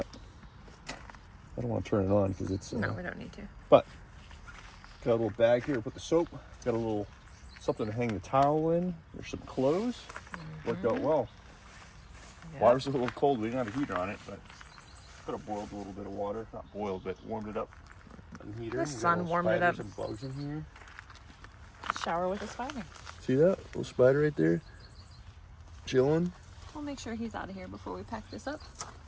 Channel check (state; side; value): identical; both; correlation 1.00